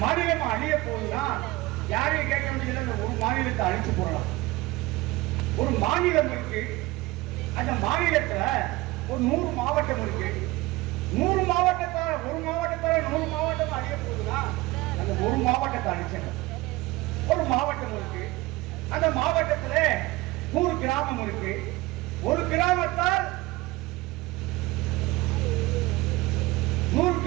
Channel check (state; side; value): quieter; left; 20.2 dB